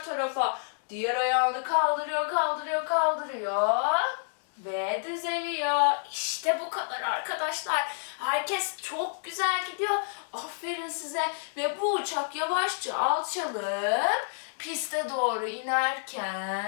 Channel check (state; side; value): silent; right; digital silence